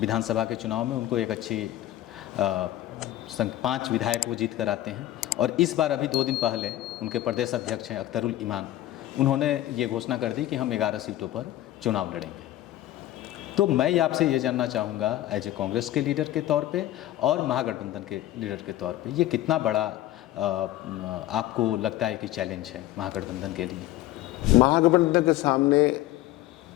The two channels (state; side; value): quieter; right; 14.5 dB